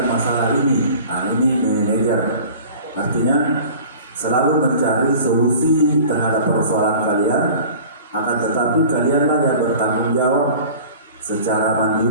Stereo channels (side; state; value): both; inverted; correlation -0.42